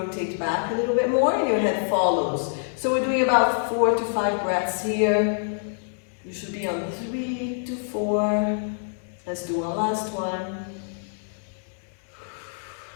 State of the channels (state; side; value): silent; right; digital silence